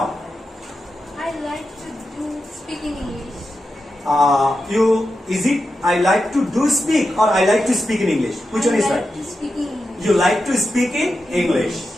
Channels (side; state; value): both; normal; correlation 0.89